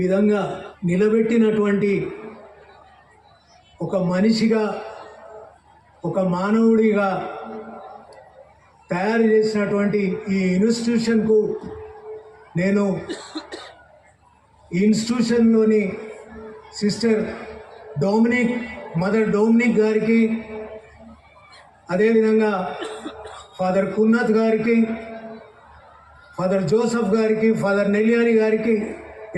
విధంగా నిలబెట్టినటువంటి ఒక మనిషిగా, ఒక మానవుడిగా తయారు చేసినటువంటి ఈ ఇన్స్టిట్యూషన్కు నేను ఈ ఇన్స్టిట్యూషన్లోని సిస్టర్ మదర్ డొమినిక్ గారికి, అదేవిధంగా ఫాదర్ కున్నత్ గారికి, ఫాదర్ జోసఫ్ గారికి, ఫాదర్ నెల్యాని గారికి,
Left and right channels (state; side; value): identical; both; correlation 1.00